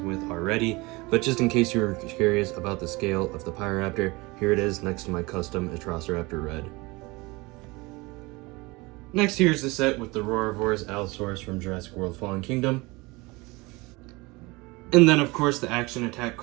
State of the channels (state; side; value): quieter; left; 23.8 dB